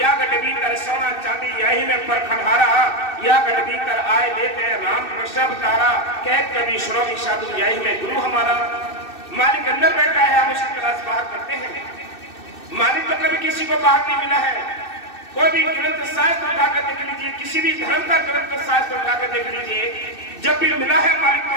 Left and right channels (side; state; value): right; late; 2.6 ms